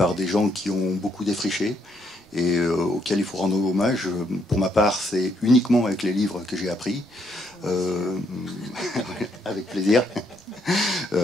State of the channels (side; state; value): both; normal; correlation 0.73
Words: des gens qui ont beaucoup défriché, et auquel il faut rendre hommage. Pour ma part, c'est uniquement avec les livres que j'ai appris. Avec plaisir.